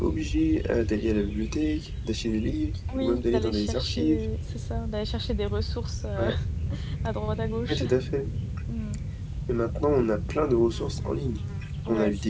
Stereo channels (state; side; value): identical; both; correlation 1.00